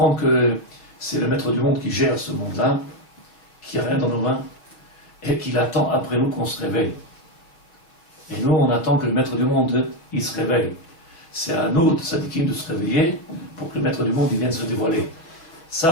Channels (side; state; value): right; late; 6.0 ms